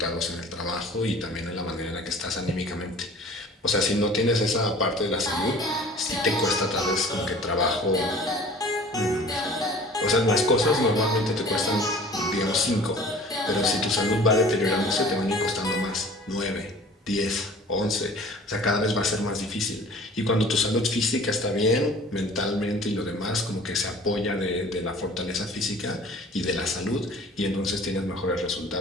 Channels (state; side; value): normal; both; correlation 0.46